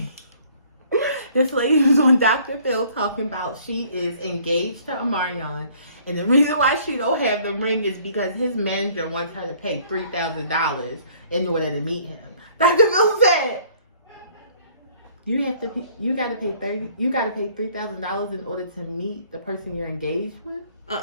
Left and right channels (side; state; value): both; inverted; correlation -0.58